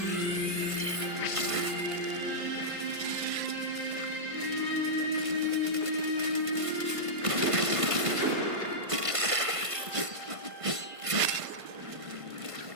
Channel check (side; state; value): left; late; 1.5 ms